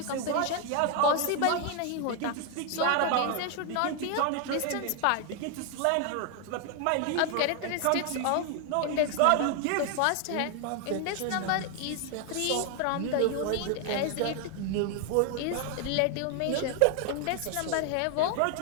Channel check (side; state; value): both; different; correlation 0.00